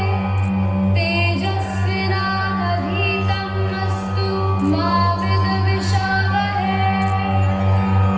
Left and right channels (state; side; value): identical; both; correlation 1.00